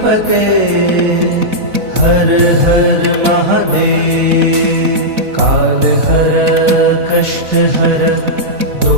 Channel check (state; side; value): late; left; 4.0 ms